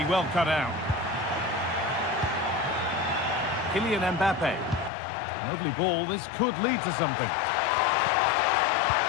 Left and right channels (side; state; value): right; drops out; at 4.9 s